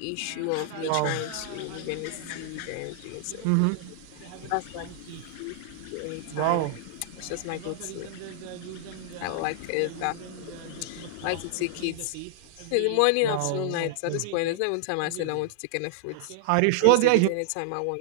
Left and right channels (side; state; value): both; different; correlation -0.01